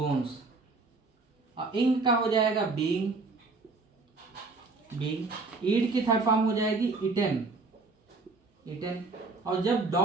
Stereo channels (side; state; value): left; quieter; 3.8 dB